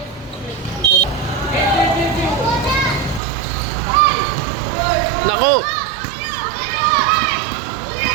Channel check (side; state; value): left; drops out; at 3.2 s